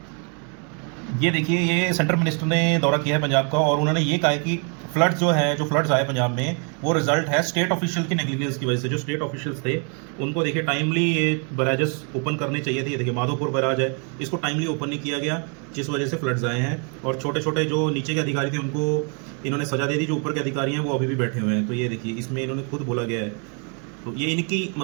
ये देखिए, ये सेंट्रल मिनिस्टर ने दौरा किया है पंजाब का, और उन्होंने ये कहा है कि फ्लड्स जो है, जो फ्लड्स आए पंजाब में, वो रिजल्ट है स्टेट ऑफिशियल की नेग्लिजेंस की वजह से। जो स्टेट ऑफिशियल्स थे उनको देखिए टाइमली ये बैराजेस ओपन करने चाहिए थे। ये देखिए, माधोपुर बैराज है, इसको टाइमली ओपन नहीं किया गया, जिस वजह से फ्लड्स आए हैं। और छोटे छोटे जो नीचे के अधिकारी थे उनको इन्होंने सजा दे दी, जो ऊपर के अधिकारी हैं वो अभी भी बैठे हुए हैं। तो ये देखिए, इसमें इन्होंने खुद बोला गया है। तो ये इनकी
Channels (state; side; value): quieter; left; 38.6 dB